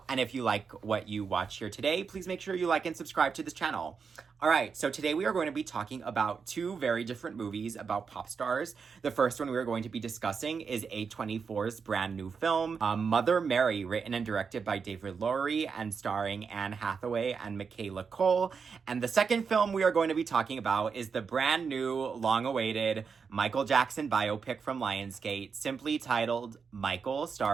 And if you like what you watch here today, please make sure you like and subscribe to this channel. All right, so today we are going to be talking about two very different movies about pop stars. The first one we are going to be discussing is A24's brand new film, Mother Mary, written and directed by David Lowery and starring Anne Hathaway and Michaela Coel. And the second film we are going to be talking about is the brand new, long-awaited Michael Jackson biopic from Lionsgate, simply titled Michael,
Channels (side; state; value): left; quieter; 5.7 dB